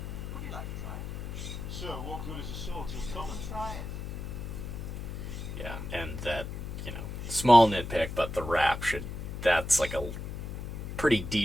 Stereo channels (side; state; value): left; noise; hum, 7 dB below the sound